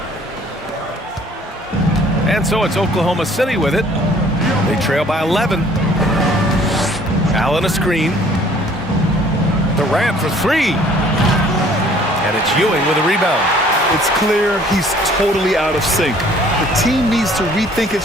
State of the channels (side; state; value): both; normal; correlation 0.56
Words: And so it's Oklahoma City with it. They trail by 11. Allen a screen. Durant for three. And it's Ewing with a rebound. It's clear he's totally out of sync. The team needs to rethink its